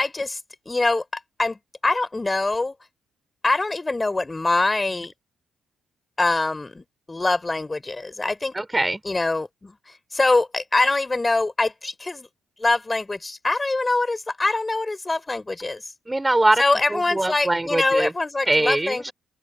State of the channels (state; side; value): normal; both; correlation 0.98